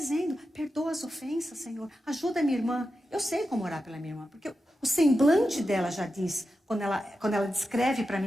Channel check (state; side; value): normal; both; correlation 0.90